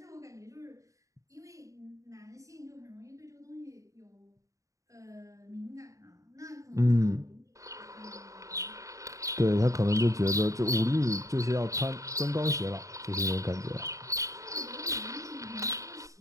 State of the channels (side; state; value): left; late; 0.16 ms